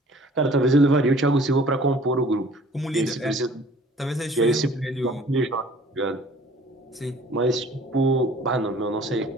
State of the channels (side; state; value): both; normal; correlation 0.51